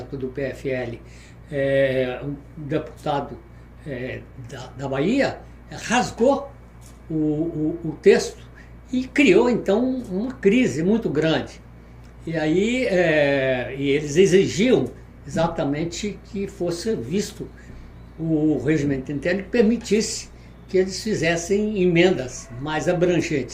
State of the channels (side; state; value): both; identical; correlation 1.00